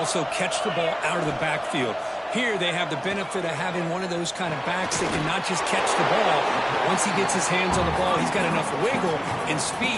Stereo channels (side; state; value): both; identical; correlation 1.00